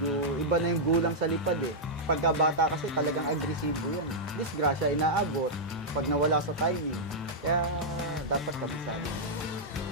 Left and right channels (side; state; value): both; normal; correlation -0.07